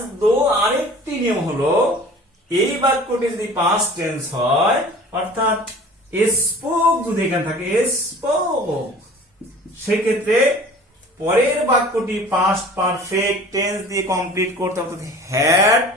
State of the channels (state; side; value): normal; both; correlation 0.44